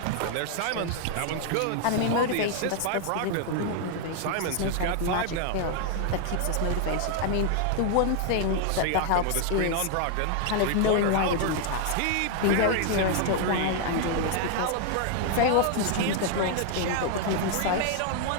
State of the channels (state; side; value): different; both; correlation 0.00